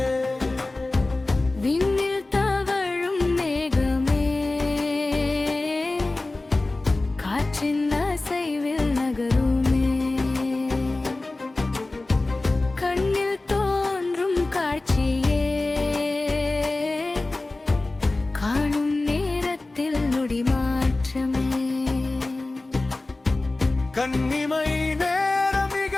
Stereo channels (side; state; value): right; quieter; 3.0 dB